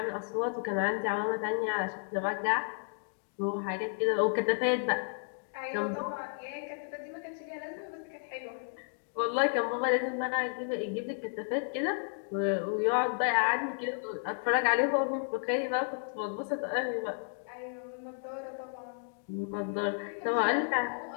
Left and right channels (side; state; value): right; silent; digital silence